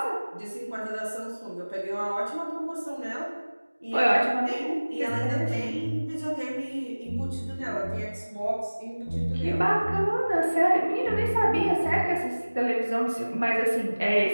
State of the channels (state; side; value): inverted; both; correlation -1.00